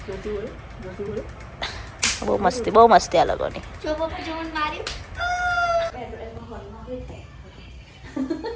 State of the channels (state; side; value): identical; both; correlation 1.00